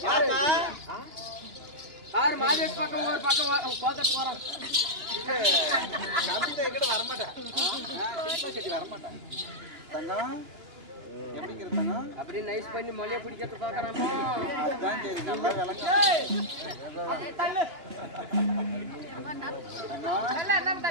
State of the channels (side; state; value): left; late; 2.9 ms